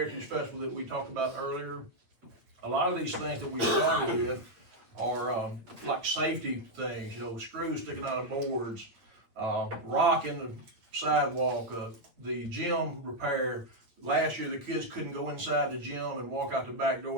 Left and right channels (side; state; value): left; late; 8.9 ms